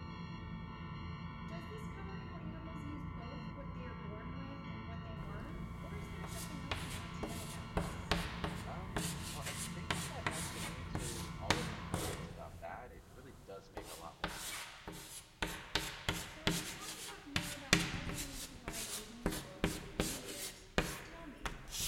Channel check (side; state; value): both; identical; correlation 1.00